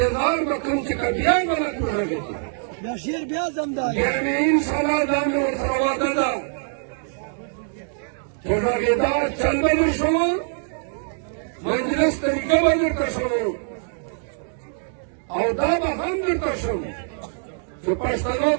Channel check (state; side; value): silent; left; digital silence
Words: به کوم چې که بیا به نه وډغېده بیا مې انشاءالله دا مې ورسره وعده ده چې غږېدا چل به در شو مجلس طریقه به درته شو او دا به هم درته شم چې پښتنو